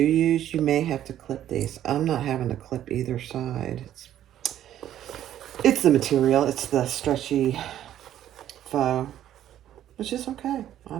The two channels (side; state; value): left; quieter; 11.6 dB